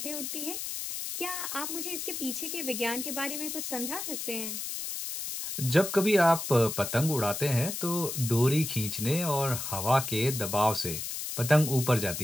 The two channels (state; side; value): noise; left; hiss, 5 dB below the sound